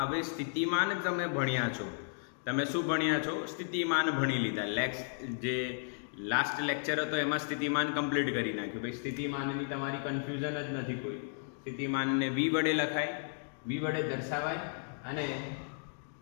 હવે સ્થિતિમાન તમે ભણ્યા છો. તમે શું ભણ્યા છો? સ્થિતિમાન ભણી લીધા. જે લાસ્ટ લેક્ચર હતો એમાં સ્થિતિમાન કમ્પ્લીટ કરી નાખ્યું. ભાઈ સ્થિતિમાનની તમારી કન્ફ્યુઝન જ નથી કોઈ. સ્થિતિમાનને v વડે લખાય, v વડે દર્શાવાય અને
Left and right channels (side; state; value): right; silent; digital silence